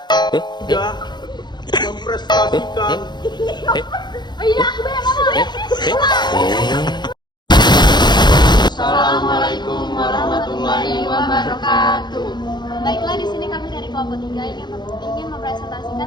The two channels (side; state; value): right; late; 0.21 ms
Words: tidak memprestasikan. Assalamualaikum warahmatullahi wabarakatuh. Baiklah, di sini kami dari kelompok 3 ingin mempresentasikan